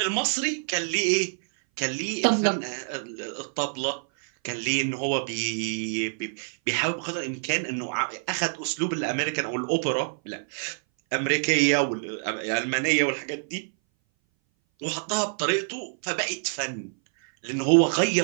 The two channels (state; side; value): silent; left; 59 dB below the other